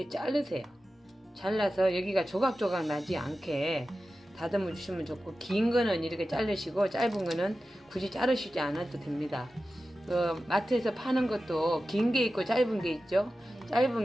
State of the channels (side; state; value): both; normal; correlation 0.94